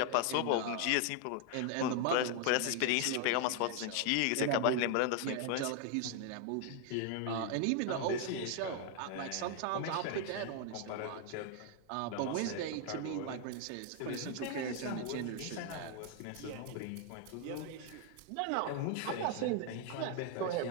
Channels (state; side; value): different; both; correlation 0.00